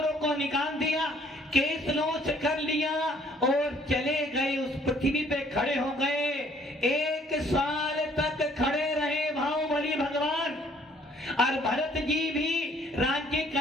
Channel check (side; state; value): both; normal; correlation 0.61